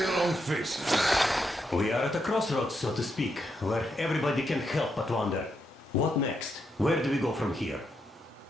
long faces? We are at a crossroads, so to speak, where everybody can help but wonder. What next? Where do we go from here?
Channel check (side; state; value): both; normal; correlation 0.81